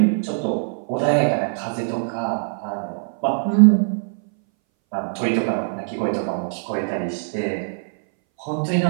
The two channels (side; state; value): left; silent; 61 dB below the other